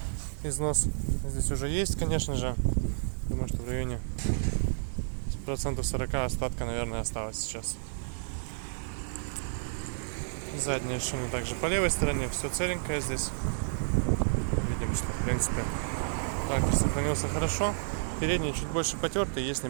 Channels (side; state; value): left; silent; digital silence